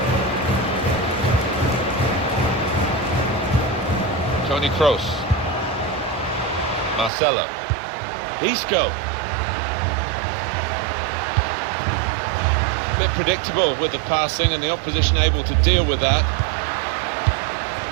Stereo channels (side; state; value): left; drops out; at 7.1 s